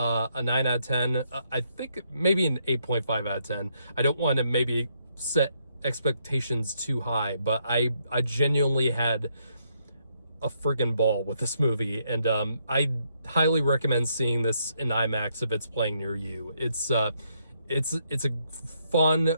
9 out of 10. I think maybe an 8.5 out of 10. I don't want to maybe set expectations too high, but I genuinely had a friggin' ball with this movie, and I highly recommend seeing this in IMAX if it's playing near you. It's a fun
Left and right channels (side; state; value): both; inverted; correlation -0.75